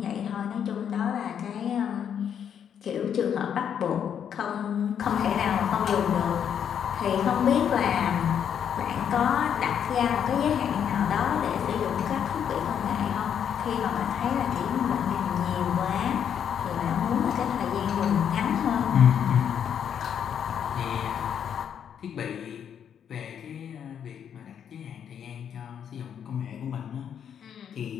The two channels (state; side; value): quieter; right; 8.5 dB